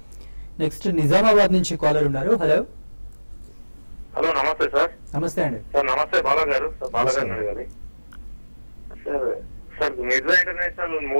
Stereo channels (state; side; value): inverted; both; correlation -1.00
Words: నెక్స్ట్ నిజామాబాద్ నుంచి కాలర్ ఉన్నారు. హలో హలో, నమస్తే సార్. నమస్తే అండి. సార్ నమస్తే, బాలా గారు. సార్ బాలా గారు అడగాలి. సార్ మిర్జా ఇంటర్నేషనల్